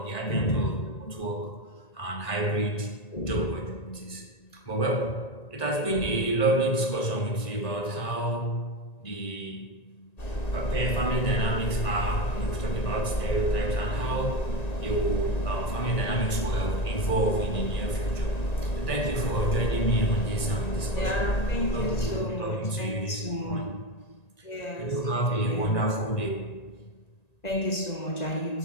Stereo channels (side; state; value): right; late; 1.9 ms